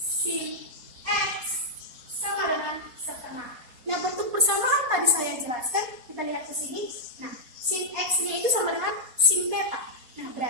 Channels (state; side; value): late; left; 4.3 ms